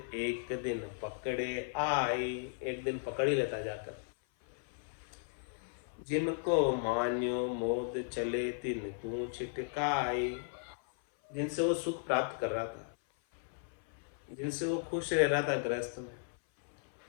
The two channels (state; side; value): silent; right; 54 dB below the other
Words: दिन पकड़े आई। एक दिन पकड़ ही लेता जाकर। जिनको मान्यो मोद, चले तिनको छिटकाई। जिनसे वो सुख प्राप्त कर रहा था, जिनसे वो खुश रह रहा था गृहस्थ में,